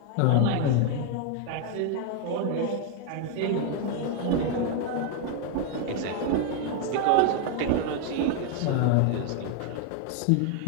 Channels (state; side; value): different; both; correlation 0.00